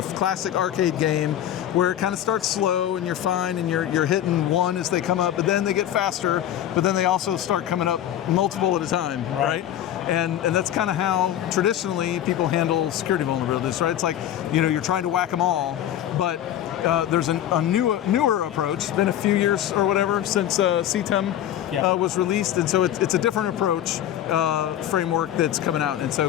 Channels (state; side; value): quieter; right; 11.3 dB